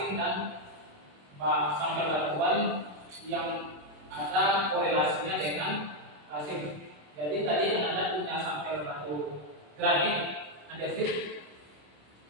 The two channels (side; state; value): left; late; 27 ms